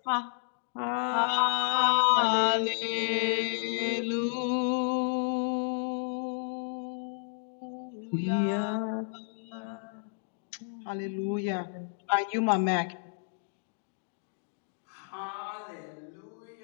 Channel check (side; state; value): right; silent; digital silence